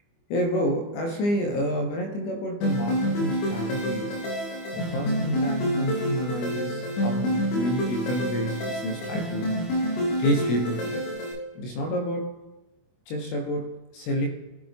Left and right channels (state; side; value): late; right; 24 ms